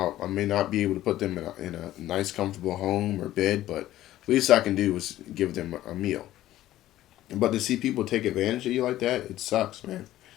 I may not be able to put them in a nice, comfortable home or bed, but least I can do is give them a meal. But to see people take advantage of you like that, it sucks, man.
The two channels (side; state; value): right; quieter; 14.3 dB